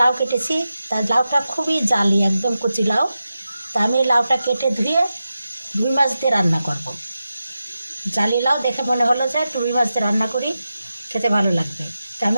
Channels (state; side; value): inverted; both; correlation -0.91